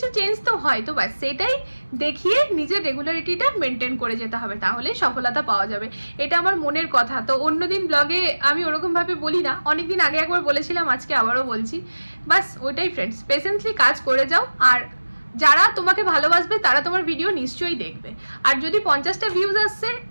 চেঞ্জ তো হয়, তো ব্যাস সেটাই দেখিয়ে নিজের রেগুলারিটিটা মেনটেন করে যেতে হবে, তাহলে সফলতা পাওয়া যাবে। এটা আমার মনের কথা। তো অন্যদিন ব্লগে আমি ওরকম ভাবে বলি না, অনেকদিন আগে একবার বলেছিলাম, আজকে আবারও বলছি। বাস ওইটাই ফ্রেন্ডস, পেশেন্টলি কাজ করে যাও। আর যারা তোমাকে ভালোবাসবে তারা তোমার ভিডিও নিশ্চয়ই দেখবে। আর যদি 50টা ভিউজ আসছে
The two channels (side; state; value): both; inverted; correlation -1.00